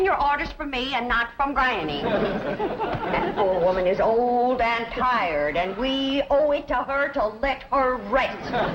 your orders from me and not from Granny. That poor woman is old and tired, and we owe it to her to let her rest.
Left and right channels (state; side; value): identical; both; correlation 1.00